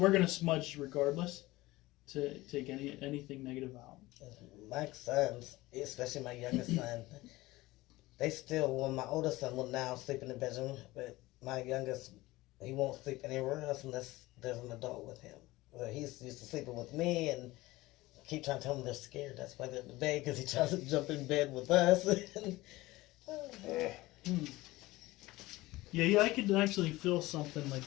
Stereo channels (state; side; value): quieter; right; 19.1 dB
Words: gonna smudge regardless to take anything negative out. My sons, especially my youngest son, they still, well, my oldest son will now sleep in the bedroom, but my youngest, he won't sleep anywhere else unless there's an adult with him. Well, he's used to sleeping with me, and keep trying to tell them they're scared. That's why they're in the bed, because he tries to jump in bed with us. Yeah, I could actually feel something